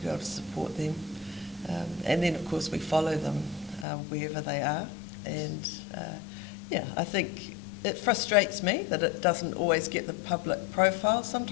able to support them. And then, of course, we follow them wherever they are. And I think it frustrates me that it doesn't always get the public profile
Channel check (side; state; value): right; drops out; at 3.9 s